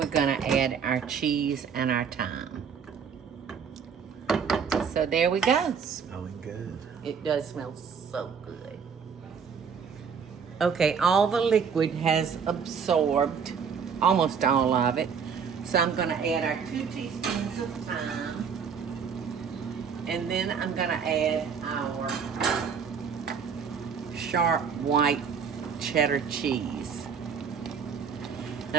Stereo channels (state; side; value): quieter; left; 6.5 dB